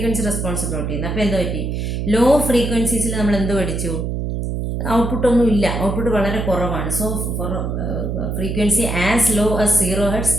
റെസ്പോൺസ് പ്ലോട്ട് ചെയ്യുന്നത്. അപ്പോൾ എന്താ പറ്റി? ലോ ഫ്രീക്വൻസീസിൽ നമ്മൾ എന്ത് പഠിച്ചു? ഔട്ട്പുട്ടൊന്നും ഇല്ല, ഔട്ട്പുട്ട് വളരെ കുറവാണ്. So for frequency as low as 0 hertz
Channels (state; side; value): noise; right; hum, 2 dB below the sound